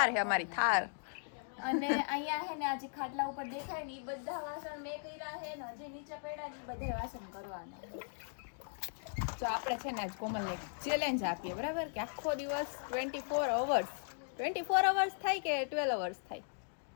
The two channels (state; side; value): silent; right; digital silence